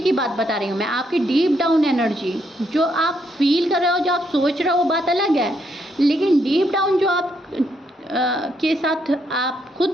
बात बता रही हूँ मैं, आपकी डीप डाउन एनर्जी जो आप फील कर रहे हो, जो आप सोच रहे हो, वो बात अलग है, लेकिन डीप डाउन जो आप के साथ आप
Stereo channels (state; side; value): normal; both; correlation 0.75